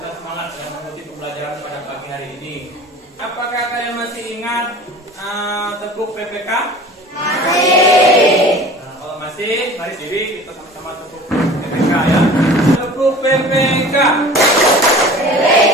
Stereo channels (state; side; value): normal; both; correlation 0.42